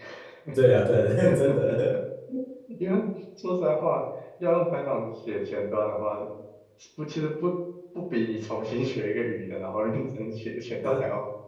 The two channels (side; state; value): both; identical; correlation 1.00